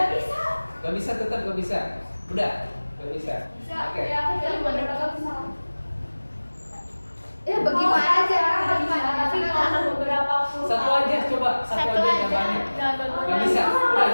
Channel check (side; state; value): both; inverted; correlation -1.00